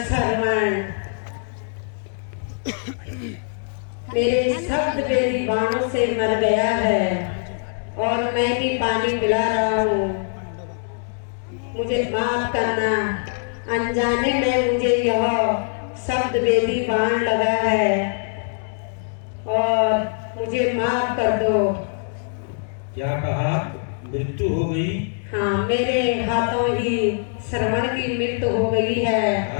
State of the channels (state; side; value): silent; right; digital silence